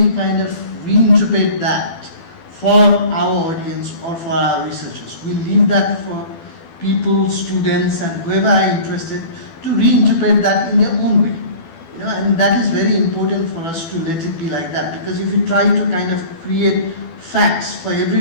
kind of reinterpret that for our audience or for our researchers. We leave that for people, students, and whoever are interested to reinterpret that in their own way. And that is very important for us to let it be like that, because if you try to kind of create facts for every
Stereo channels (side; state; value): right; late; 12 ms